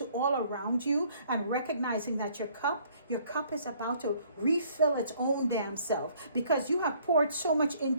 all around you and recognizing that your cup is about to refill its own damn self, because you have poured so much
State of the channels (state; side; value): inverted; both; correlation -0.61